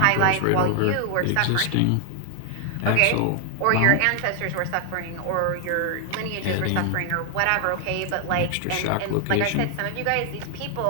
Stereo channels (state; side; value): different; both; correlation 0.00